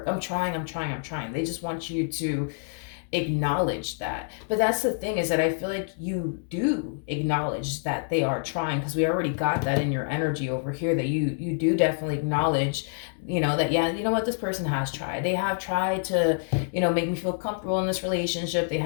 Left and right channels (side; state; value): right; silent; digital silence